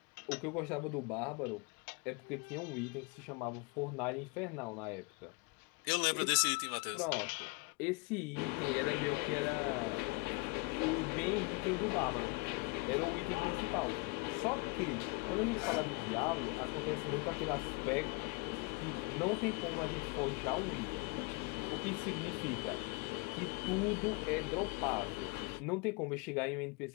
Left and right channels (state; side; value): quieter; right; 27.2 dB